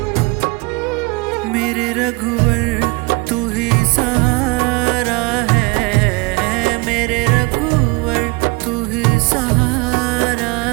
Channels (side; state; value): left; quieter; 27.0 dB